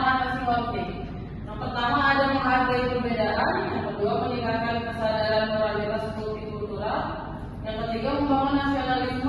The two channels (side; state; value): both; identical; correlation 1.00